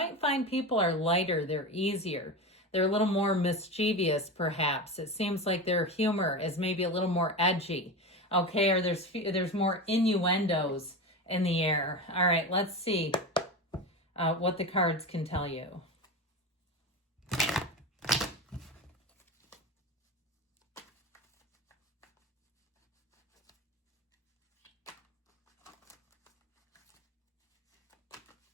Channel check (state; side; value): normal; both; correlation 0.23